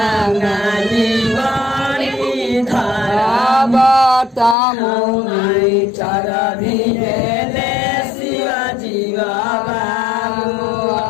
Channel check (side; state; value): right; drops out; at 4.5 s